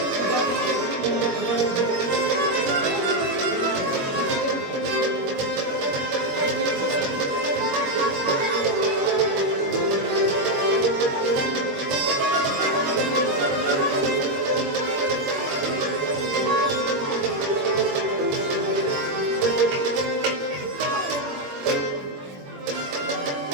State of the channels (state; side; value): late; left; 21 ms